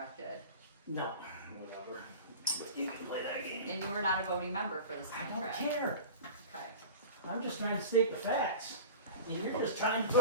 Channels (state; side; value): inverted; both; correlation -0.36